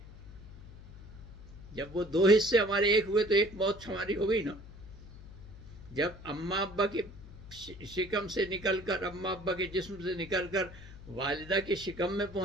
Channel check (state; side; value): noise; left; hum, 16 dB below the sound